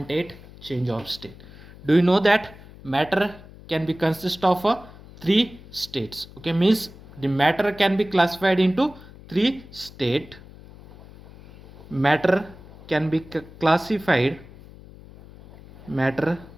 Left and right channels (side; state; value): left; noise; hum, 19 dB below the sound